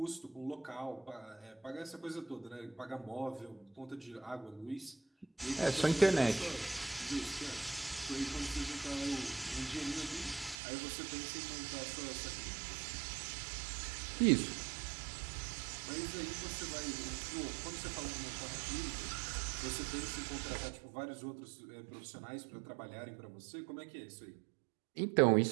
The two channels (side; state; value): left; drops out; at 10.6 s